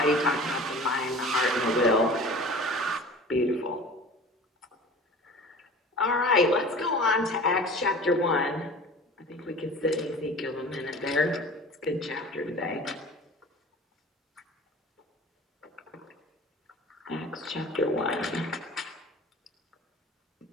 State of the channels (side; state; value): both; normal; correlation 0.40